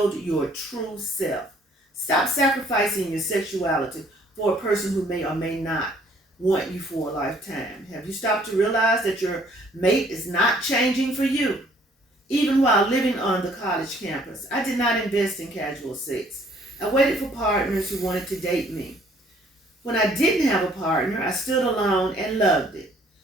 your true self. Stop sacrificing your sexuality for a person who may or may not want you for a lifetime. Have you stopped to realize that your mate is not changing for you? Even while living on the college campus, I did not invest in casual sex. I waited for partners who wanted to date me. When I didn't have a partner, I stood alone and loved it.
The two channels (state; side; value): normal; both; correlation 0.61